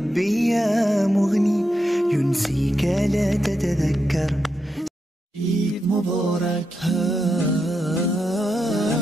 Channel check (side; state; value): both; normal; correlation 0.85